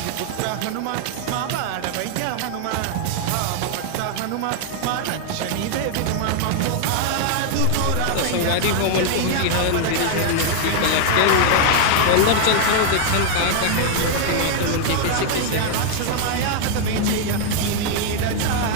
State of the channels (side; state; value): both; different; correlation 0.00